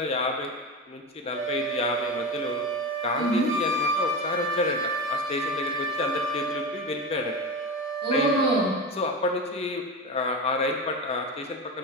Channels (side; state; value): both; normal; correlation 0.22